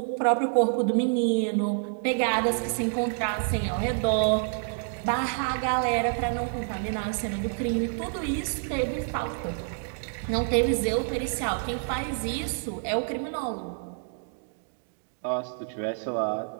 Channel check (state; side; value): silent; left; digital silence